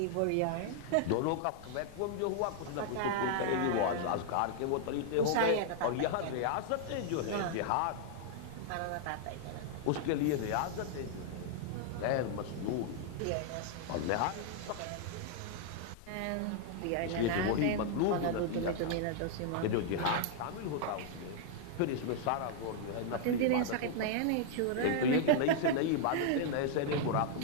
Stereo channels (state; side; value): different; both; correlation 0.00